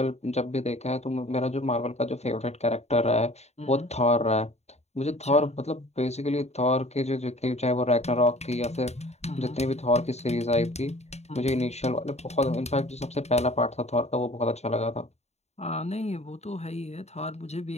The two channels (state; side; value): late; right; 0.32 ms